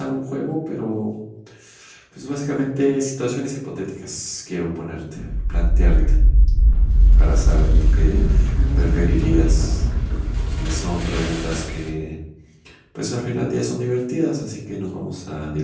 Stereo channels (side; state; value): both; identical; correlation 1.00